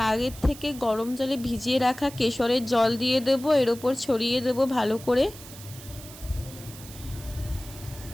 আগের থেকে গরম জলে ভিজিয়ে রাখা কেশরের জল দিয়ে দেব, এর ওপর ছড়িয়ে দেব ভালো করে।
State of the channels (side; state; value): right; noise; hiss, 16 dB below the sound